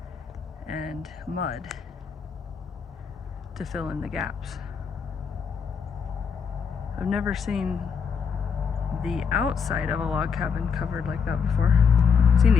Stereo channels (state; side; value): quieter; right; 6.1 dB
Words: and mud to fill in the gaps. I've never seen the outside of a log cabin covered like that before. I've seen